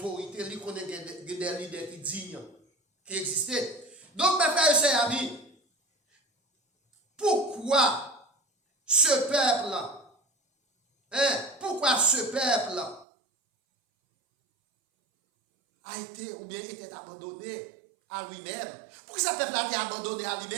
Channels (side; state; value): left; drops out; at 13.1 s